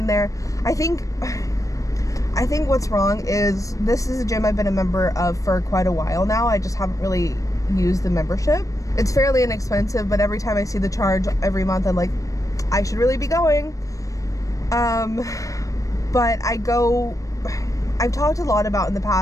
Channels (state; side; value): late; right; 0.16 ms